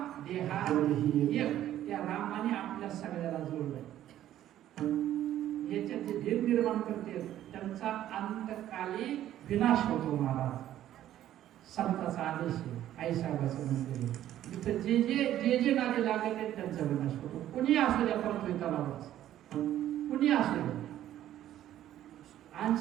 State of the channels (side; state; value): left; quieter; 12.4 dB